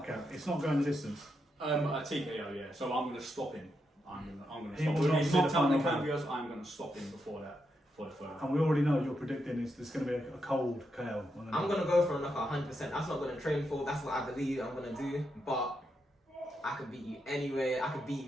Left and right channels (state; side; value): normal; both; correlation 0.83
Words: It's not going the distance. A TKO, yeah. So I'm going to stop him. I'm going to He stop will him. not He's see the knocked out the final Cambios. I'm going to stop him before that, for the third. And we already know you're predicting there's going to be a cold KO. I'm going to go for a knockout 100%. That's not going to train for. That's what I believe I'm going to do. But I could beat you anyway. I could beat